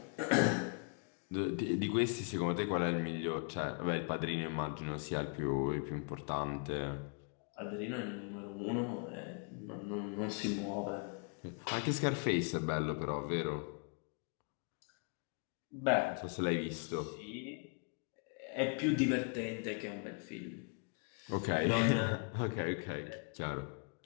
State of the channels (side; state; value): right; quieter; 39.4 dB